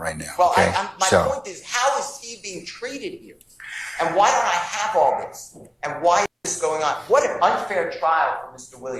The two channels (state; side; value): identical; both; correlation 1.00